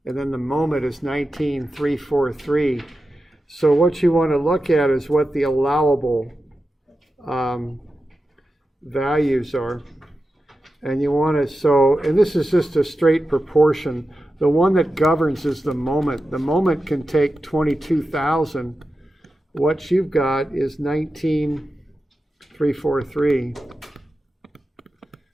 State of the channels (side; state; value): both; normal; correlation 0.91